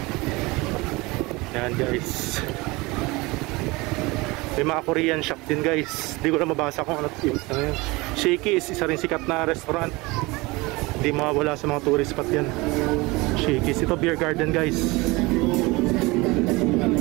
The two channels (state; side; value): quieter; left; 23.3 dB